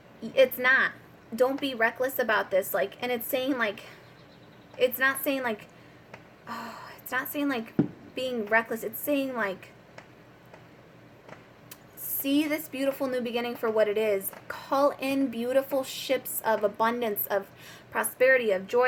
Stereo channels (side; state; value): both; identical; correlation 1.00